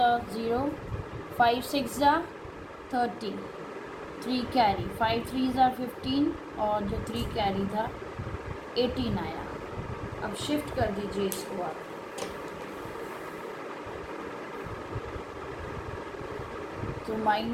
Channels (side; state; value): both; identical; correlation 1.00